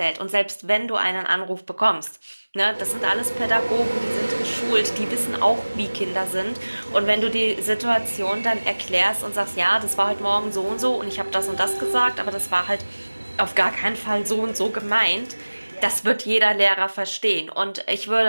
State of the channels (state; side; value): inverted; both; correlation -1.00